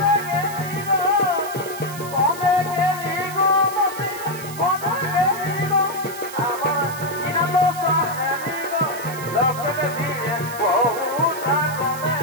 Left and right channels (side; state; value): right; noise; hiss, 13 dB below the sound